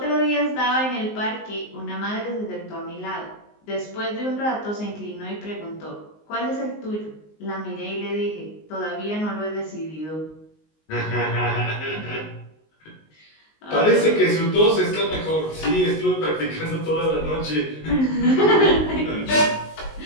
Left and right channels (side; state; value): right; late; 19 ms